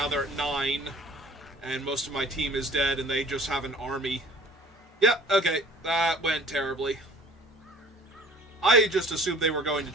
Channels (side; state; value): both; normal; correlation 0.50